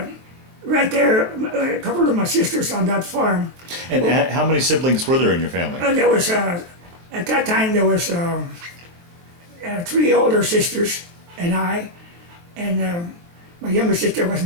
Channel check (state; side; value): late; left; 23 ms